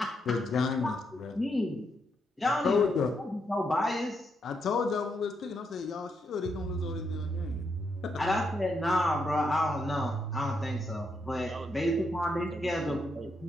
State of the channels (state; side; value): normal; both; correlation 0.79